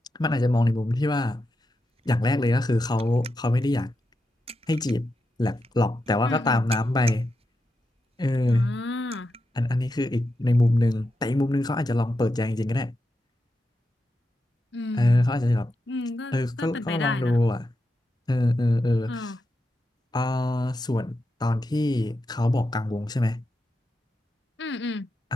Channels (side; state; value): both; normal; correlation 0.87